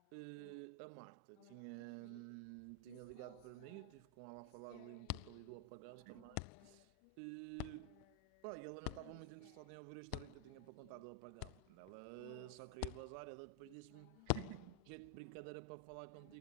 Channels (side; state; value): both; different; correlation 0.01